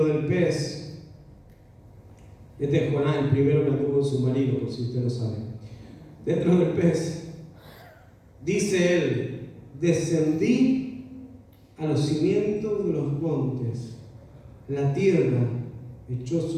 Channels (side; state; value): both; identical; correlation 1.00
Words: del pez. Este es Jonás, el primero que anduvo en submarino, por si usted lo sabe. Dentro del pez, dice él: descendí a los cimientos de los montes, la tierra echó